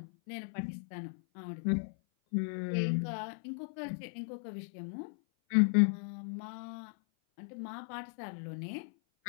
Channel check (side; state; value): right; silent; 54 dB below the other